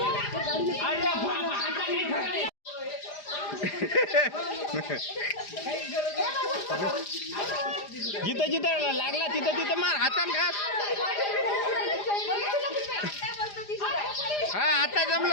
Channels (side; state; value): right; late; 4.9 ms